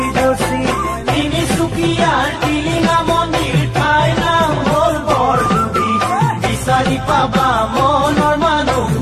ৰচি তিনিচুকীয়াৰ টিলিঙা মন্দিৰ ঠাইৰ নাম হ'ল বৰদুবি বিচাৰি পাবা মনৰ মানুহ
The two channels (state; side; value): identical; both; correlation 1.00